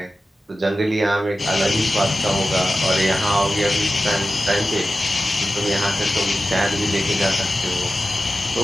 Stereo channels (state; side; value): normal; both; correlation 0.94